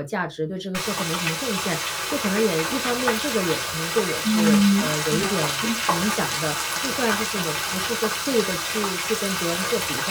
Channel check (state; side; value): identical; both; correlation 1.00